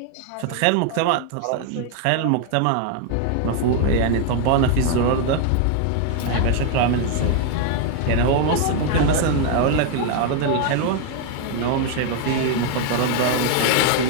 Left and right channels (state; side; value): different; both; correlation 0.00